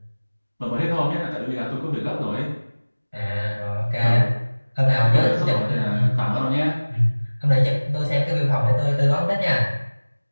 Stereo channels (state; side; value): inverted; both; correlation -1.00